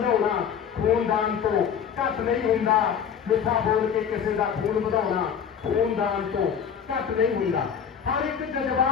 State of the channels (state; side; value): quieter; right; 7.7 dB